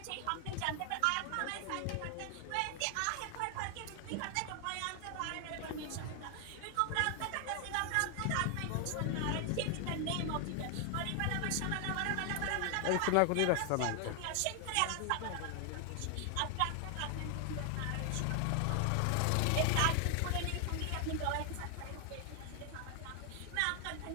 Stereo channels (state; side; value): different; both; correlation 0.00